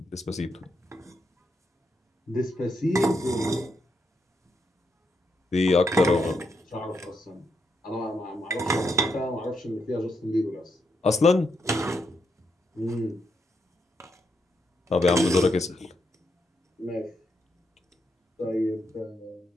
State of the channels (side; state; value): both; normal; correlation 0.80